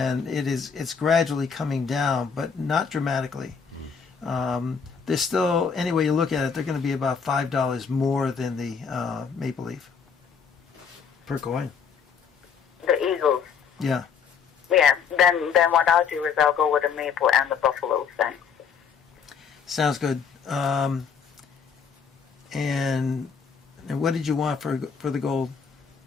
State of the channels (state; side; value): quieter; right; 6.4 dB